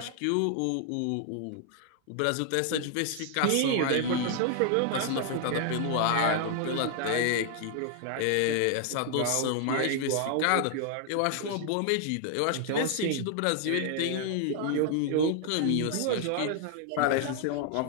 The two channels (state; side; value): different; both; correlation 0.00